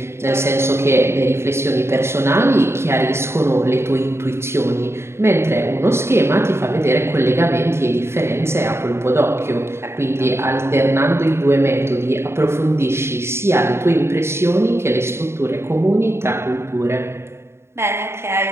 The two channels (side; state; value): left; late; 0.12 ms